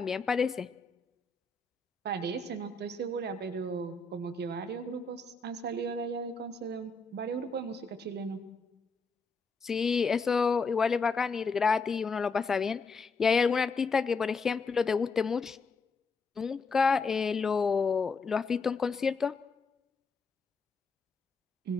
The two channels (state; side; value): quieter; right; 4.0 dB